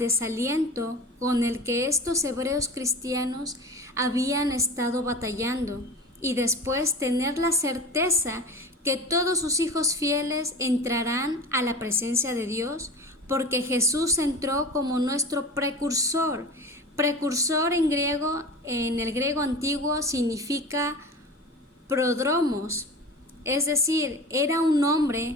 con el que estos hebreos cristianos habían estado batallando, y después tener la certeza que todos sus hijos fieles entrarán a la presencia de Dios, porque Jesús entró como nuestro precursor. Precursor en el griego antiguo significa prodromos, es decir, era un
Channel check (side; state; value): both; normal; correlation 0.33